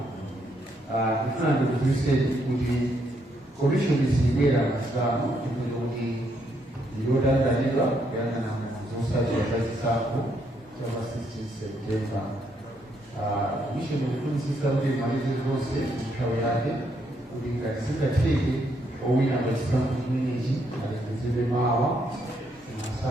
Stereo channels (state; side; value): normal; both; correlation 0.74